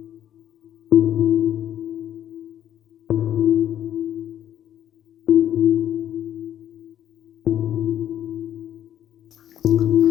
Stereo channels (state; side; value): quieter; right; 10.9 dB